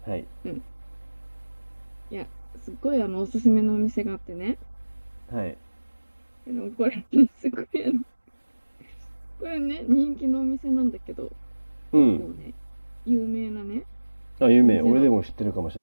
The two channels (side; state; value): both; inverted; correlation -1.00